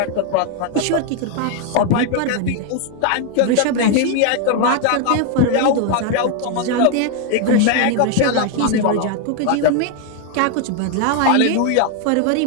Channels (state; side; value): different; both; correlation 0.01